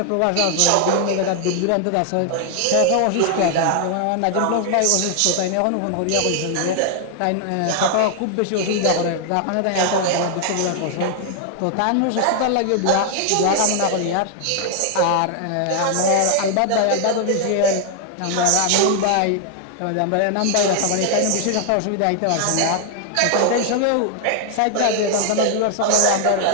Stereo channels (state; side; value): different; both; correlation 0.00